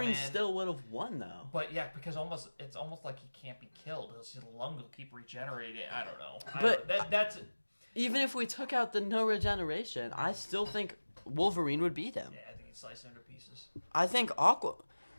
Aquaman- still would have won though. But yeah, because it's almost like he can't be killed. His lung will keep regenerating. I don't know. But- that's Even if we took out the no regeneration, I still think Wolverine would beat him. yeah. I think he'd slice him to pieces. I think Aquaman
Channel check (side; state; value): both; inverted; correlation -1.00